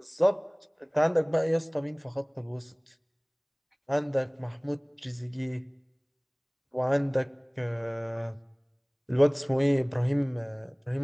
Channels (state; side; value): identical; both; correlation 1.00